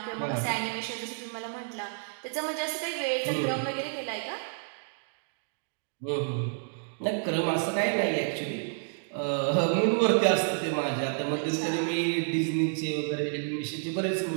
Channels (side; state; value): left; silent; digital silence